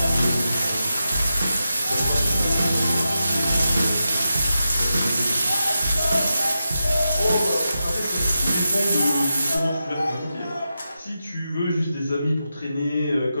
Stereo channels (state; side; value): inverted; both; correlation -0.89